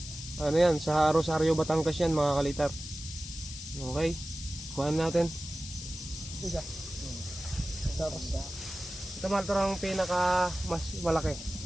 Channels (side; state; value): left; noise; hiss, 11 dB below the sound